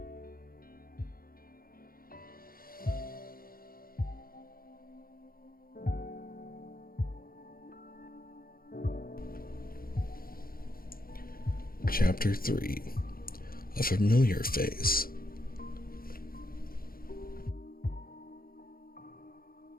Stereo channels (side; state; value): right; late; 0.42 ms